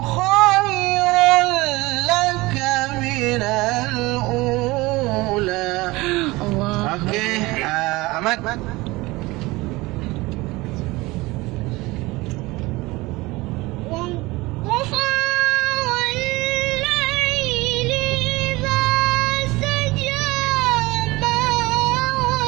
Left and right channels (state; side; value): quieter; left; 21.4 dB